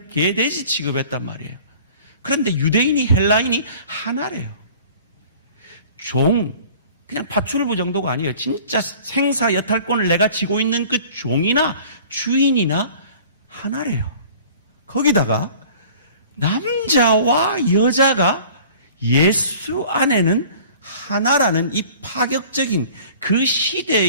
개돼지 취급했단 말이에요. 그런데 유대인이 헬라인이 하나래요. 그냥 파출부 정도가 아니에요. 진짜 생사 여탈권을 내가 쥐고 있는 그 종이나 주인이나 하나래요. 거기다가 남자와 여자가 예수 안에는 하나라는 이 파격적인 그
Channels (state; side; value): inverted; both; correlation -0.47